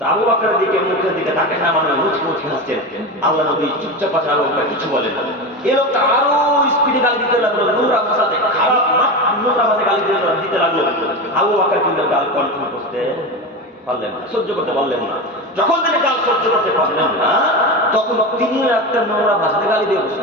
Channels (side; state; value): both; normal; correlation 0.22